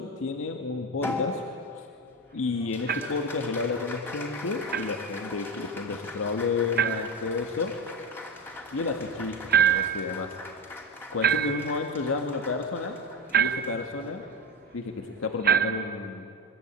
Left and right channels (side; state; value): both; normal; correlation 0.21